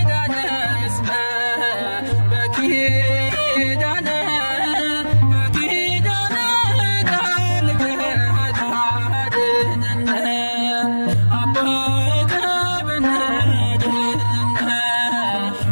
እስመ በኪዳነ በኪዳነ ቃልከ ታድነነ አበቀ በናድነነ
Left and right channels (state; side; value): inverted; both; correlation -1.00